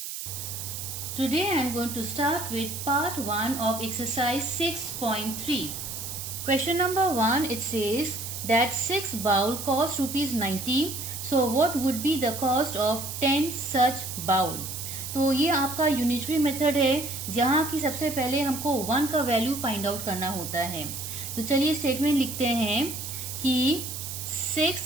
Today I am going to start with part 1 of exercise 6.3. Question number 1, it says that 6 bowl cost rupees 90. So what would be the cost of 10 such bowl? तो ये आपका unitary method है जहाँ की सबसे पहले हमको 1 का वैल्यू फाइंड आउट करना होता है। तो चलिए स्टेटमेंट लिखते हैं कि 6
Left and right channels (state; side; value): noise; right; hiss, 7 dB below the sound